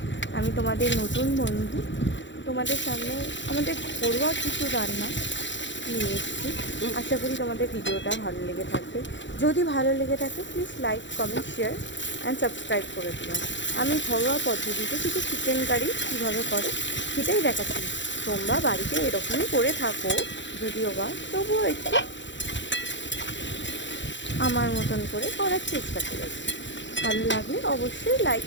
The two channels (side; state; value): right; late; 0.54 ms